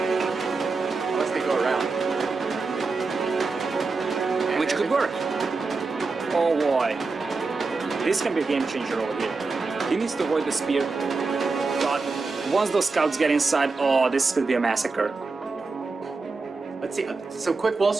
Unless they go around. Which could work. Oh boy. This can be a game changer over here. He needs to avoid the spear. But once those scouts get inside, oh, this could be a massacre. Let's see, some quick walls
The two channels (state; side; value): quieter; left; 4.1 dB